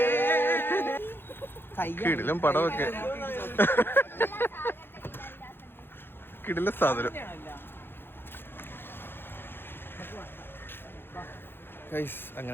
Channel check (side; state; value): right; late; 0.10 ms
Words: കിടിലും പടമൊക്കെ കിടില സാധനം. ഗൈസ്